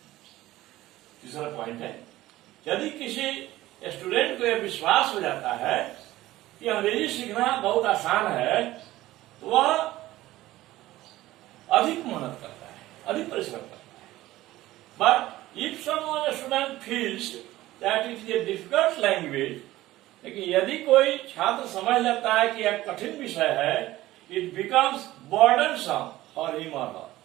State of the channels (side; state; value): left; quieter; 16.3 dB